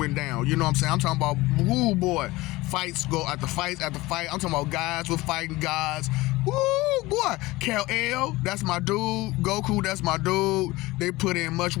down. You know what I'm saying? I'm talking about, woo boy, fights go after fight. I'm talking about guys with fighting gods. Woo boy, Kal-El, that's my dude. Goku, that's my dude. They put in much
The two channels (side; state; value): right; quieter; 20.1 dB